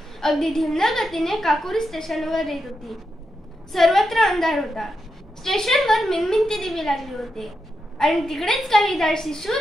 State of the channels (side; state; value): both; normal; correlation 0.86